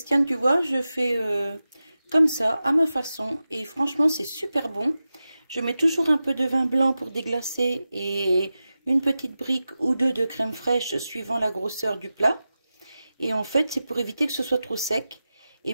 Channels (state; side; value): inverted; both; correlation -0.93